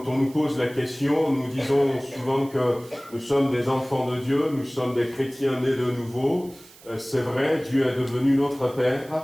on nous pose la question, nous disons souvent que nous sommes des enfants de Dieu, nous sommes des chrétiens nés de nouveau. C'est vrai, Dieu est devenu notre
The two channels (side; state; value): right; noise; hiss, 23 dB below the sound